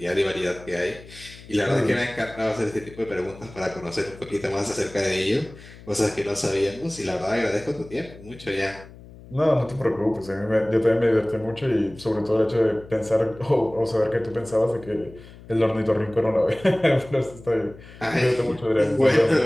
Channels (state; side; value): noise; left; hum, 19 dB below the sound